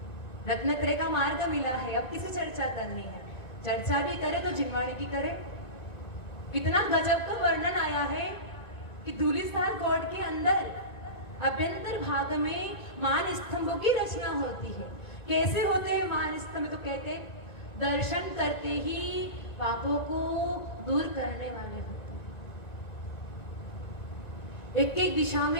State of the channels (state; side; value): late; right; 1.8 ms